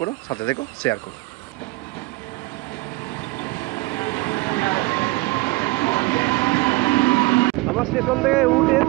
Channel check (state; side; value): quieter; left; 22.2 dB